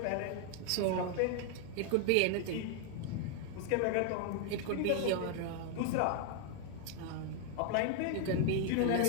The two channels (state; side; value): different; both; correlation 0.00